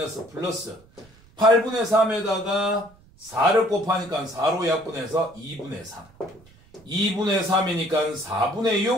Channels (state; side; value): noise; right; rumble, 28 dB below the sound